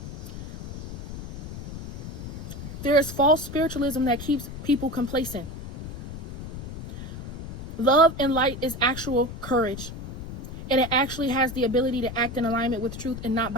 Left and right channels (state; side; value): noise; left; rumble, 9 dB below the sound